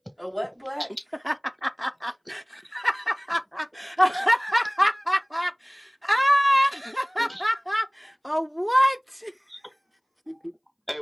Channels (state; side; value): identical; both; correlation 1.00